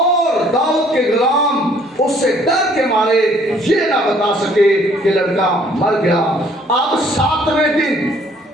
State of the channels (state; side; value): normal; both; correlation 0.60